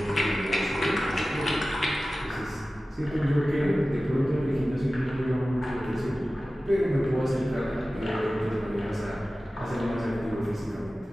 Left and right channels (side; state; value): both; normal; correlation 0.96